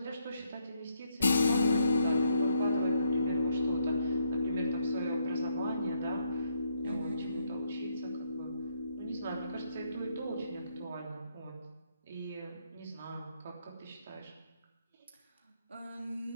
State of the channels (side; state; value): both; inverted; correlation -0.74